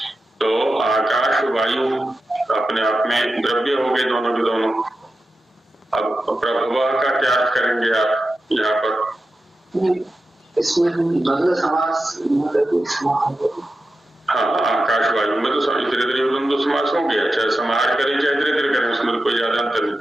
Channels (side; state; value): both; normal; correlation 0.91